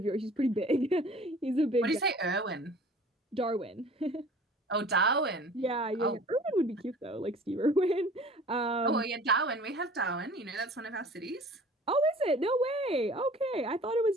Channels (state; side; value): normal; both; correlation 0.47